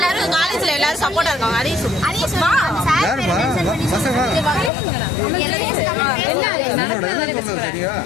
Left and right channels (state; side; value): drops out; right; at 4.7 s